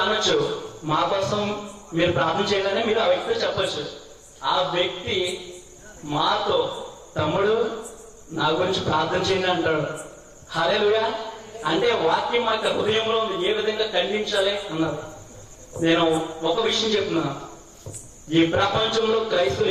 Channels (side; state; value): both; identical; correlation 1.00